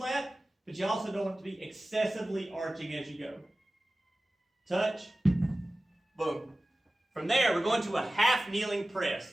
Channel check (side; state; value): both; normal; correlation 0.96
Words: but you also don't want it to be excessively arching as you go. Touch, boom. From there, we're going to a half kneeling